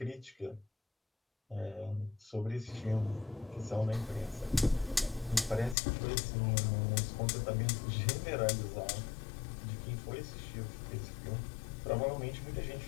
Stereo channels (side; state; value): right; drops out; at 5.8 s